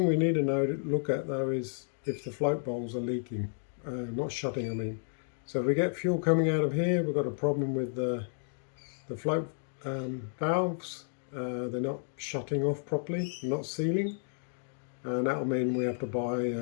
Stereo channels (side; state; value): right; silent; digital silence